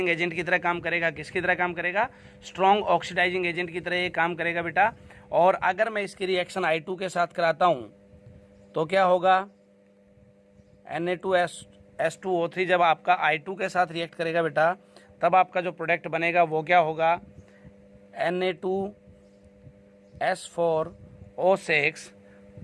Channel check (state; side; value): identical; both; correlation 1.00